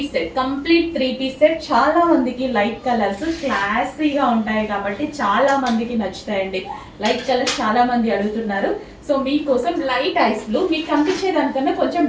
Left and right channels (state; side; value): identical; both; correlation 1.00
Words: set, complete 3 piece set. చాలా మందికి లైట్ కలర్స్ క్లాసీగా ఉంటాయి కాబట్టి చాలా మందికి నచ్చుతాయండి. లైట్ కలర్స్ చాలా మంది అడుగుతున్నారు. సో మీకోసం లైట్ ఐస్ బ్లూ, మీకు కనిపించే దానికన్నా కొంచెం